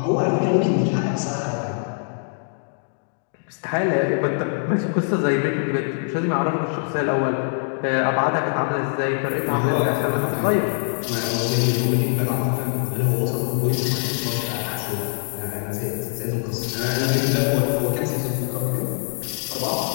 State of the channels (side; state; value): right; silent; digital silence